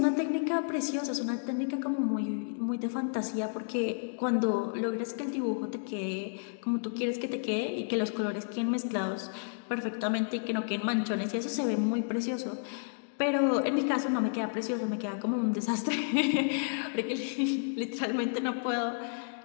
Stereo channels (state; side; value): silent; right; digital silence